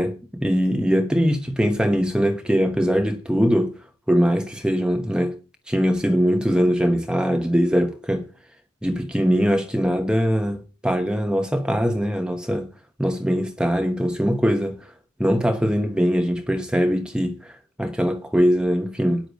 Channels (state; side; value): normal; both; correlation 0.95